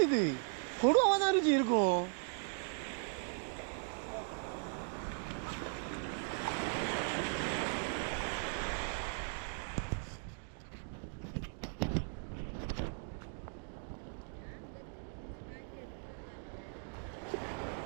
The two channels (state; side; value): silent; left; 52 dB below the other